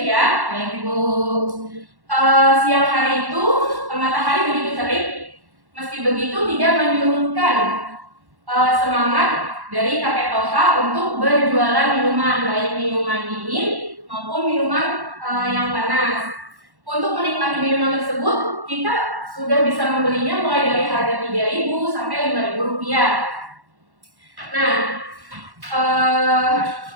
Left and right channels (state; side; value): late; left; 1.1 ms